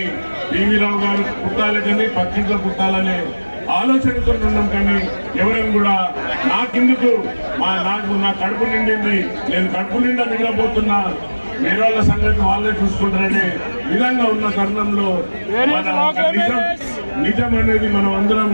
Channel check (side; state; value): both; inverted; correlation -1.00